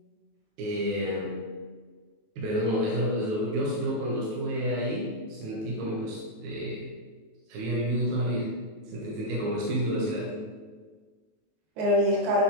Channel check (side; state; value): left; late; 18 ms